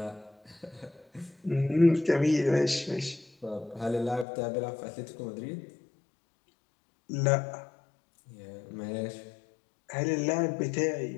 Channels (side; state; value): right; drops out; at 4.2 s